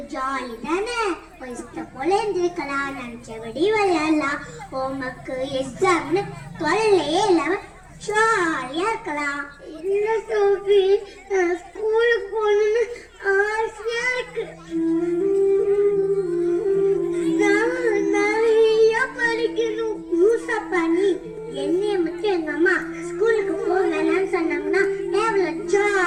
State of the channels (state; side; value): identical; both; correlation 1.00